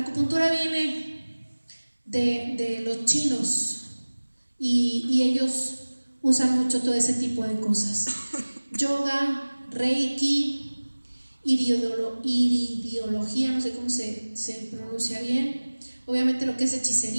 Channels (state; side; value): inverted; both; correlation -1.00